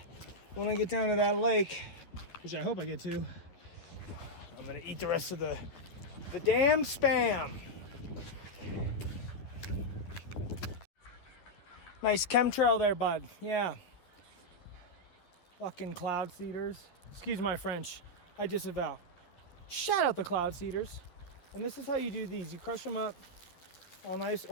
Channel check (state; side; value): late; right; 11 ms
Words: When I get down to that lake, which I hope I get to, I'm gonna eat the rest of the damn spam. Nice chemtrail there, bud. Yeah. Fucking cloud seeders. Excuse my French. I disavow. Shout out the cloud seeders. And this is how you do these. You crush them up all nice,